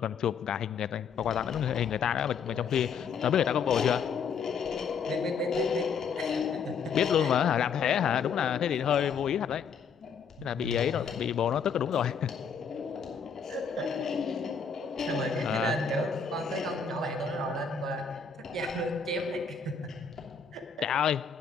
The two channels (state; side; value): quieter; right; 6.2 dB